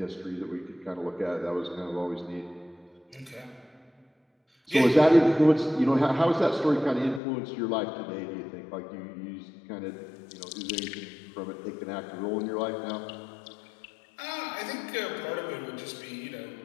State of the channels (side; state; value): right; drops out; at 7.2 s